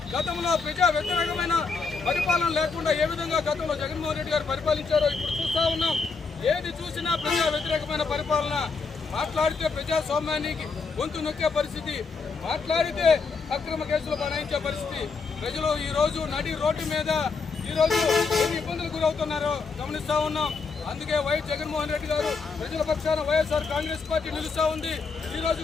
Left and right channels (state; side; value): quieter; right; 4.7 dB